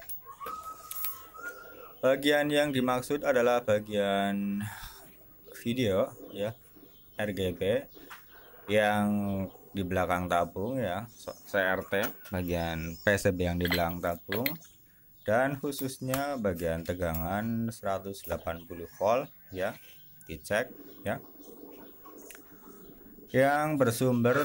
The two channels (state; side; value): identical; both; correlation 1.00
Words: Bagian yang dimaksud adalah bagian video ya, RGB yang di belakang tabung ya, CRT, bagian PCB yang di belakang tabung, dan khususnya bagian tegangan 180 volt ya, dicek ya, yang